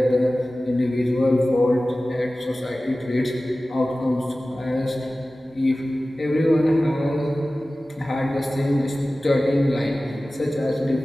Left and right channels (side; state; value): both; normal; correlation 0.96